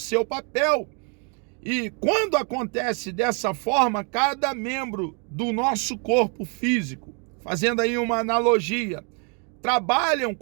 papel. E quando acontece dessa forma, cada membro do nosso corpo físico, fazendo aí uma analogia, trabalham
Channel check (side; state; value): left; quieter; 37.1 dB